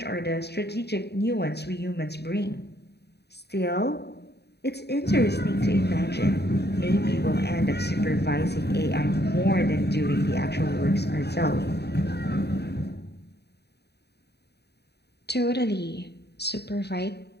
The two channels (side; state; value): right; late; 0.48 ms